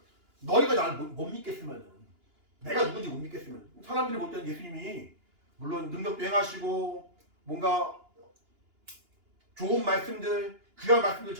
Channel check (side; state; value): left; late; 2.9 ms